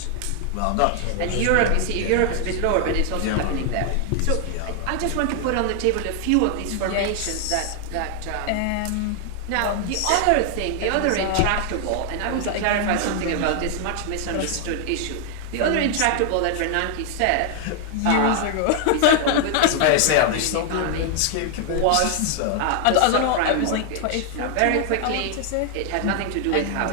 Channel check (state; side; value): different; both; correlation 0.00